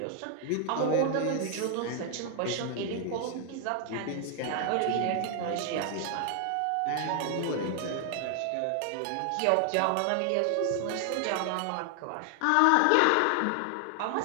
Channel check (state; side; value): different; both; correlation 0.00